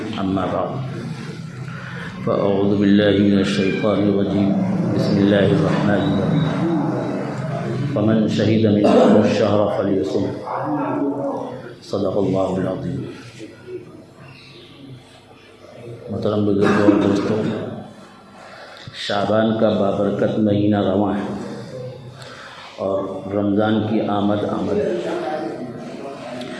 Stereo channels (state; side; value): identical; both; correlation 1.00